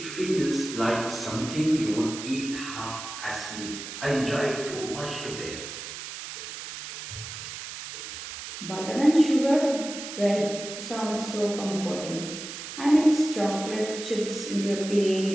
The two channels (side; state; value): right; noise; hiss, 9 dB below the sound